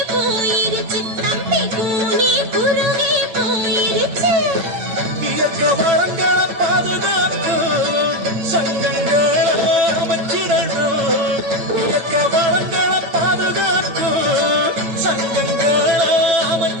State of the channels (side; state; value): left; late; 8.9 ms